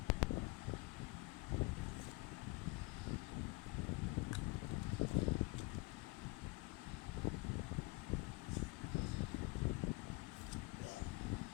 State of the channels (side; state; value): right; quieter; 24.2 dB